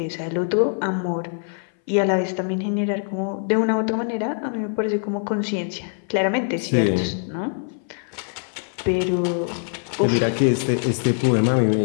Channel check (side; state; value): right; silent; 60 dB below the other